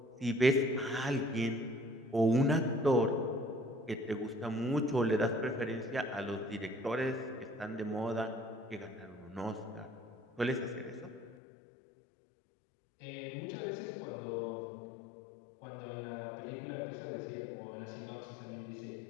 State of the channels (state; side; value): drops out; right; at 11.4 s